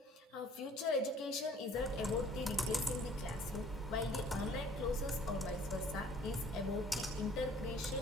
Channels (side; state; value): both; normal; correlation 0.55